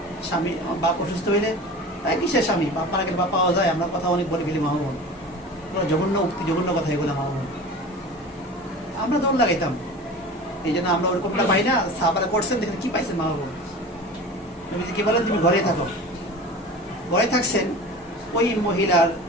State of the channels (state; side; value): normal; both; correlation 0.36